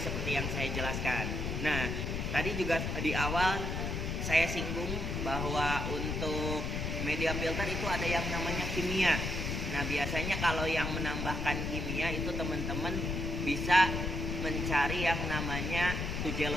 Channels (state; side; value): noise; left; rumble, 2 dB below the sound